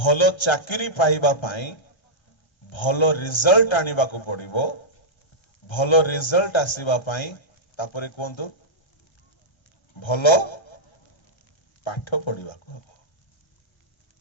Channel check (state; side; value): late; right; 1.3 ms